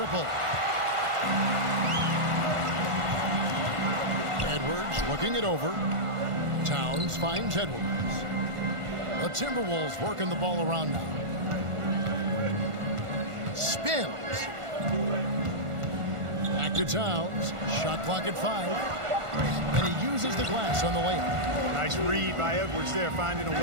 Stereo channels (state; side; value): late; left; 1.5 ms